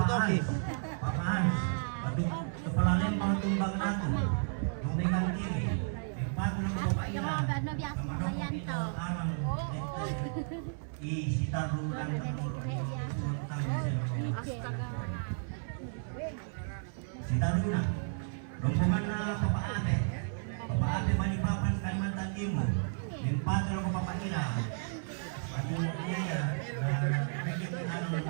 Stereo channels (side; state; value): left; silent; 56 dB below the other